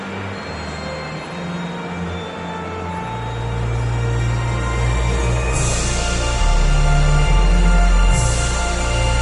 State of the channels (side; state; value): both; identical; correlation 1.00